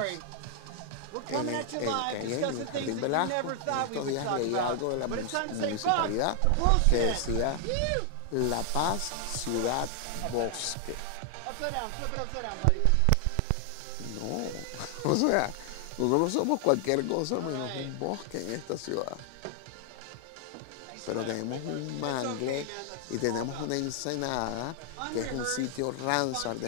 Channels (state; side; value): different; both; correlation 0.00